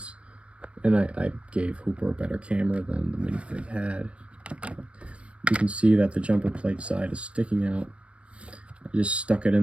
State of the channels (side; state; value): left; late; 0.061 ms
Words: and I gave Hooper a better camera than the minifig had, you can see that the jumper plate side is sticking out. I just stuck it